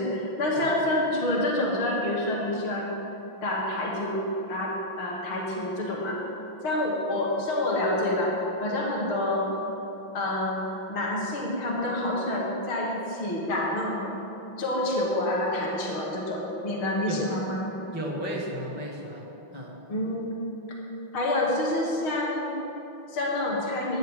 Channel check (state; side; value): late; right; 5.9 ms